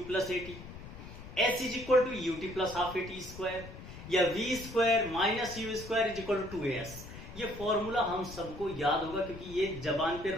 plus a t, h is equal to U T plus half A T square, या v square minus u square is equal to 2as। ये formula हम सबको याद होगा क्योंकि ये जबान पे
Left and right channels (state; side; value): noise; left; rumble, 13 dB below the sound